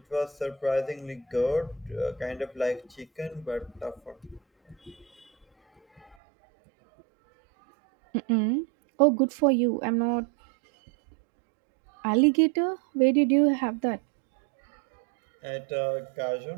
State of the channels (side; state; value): left; drops out; at 6.2 s